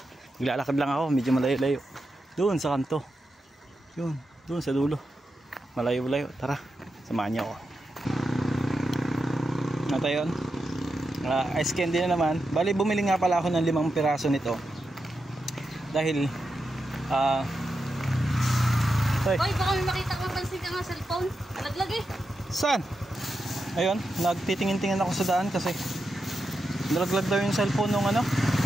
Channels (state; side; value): normal; both; correlation 0.87